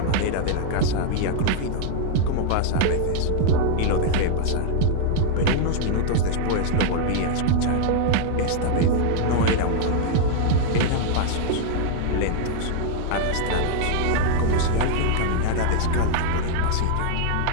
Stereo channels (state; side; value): different; both; correlation 0.00